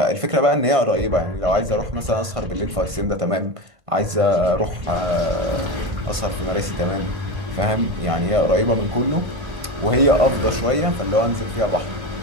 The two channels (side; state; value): left; late; 1.5 ms